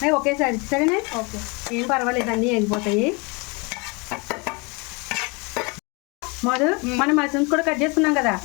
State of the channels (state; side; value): quieter; right; 29.3 dB